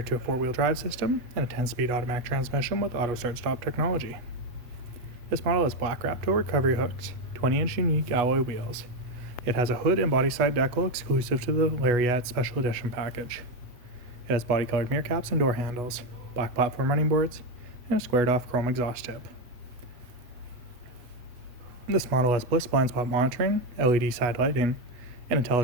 to a 4-wheel drive system and a 10-speed automatic transmission with auto start-stop technology. This model has black wrap-toe recovery hooks, 20-inch unique alloy wheels. It has a hood and body side decal exclusive to the Lariat Special Edition package. It has body-colored mirror caps and door handles, black platform running boards, and a squared-off chrome exhaust tip. This model has bliss blind spot monitoring, LED side lighting, an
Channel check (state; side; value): late; left; 8.2 ms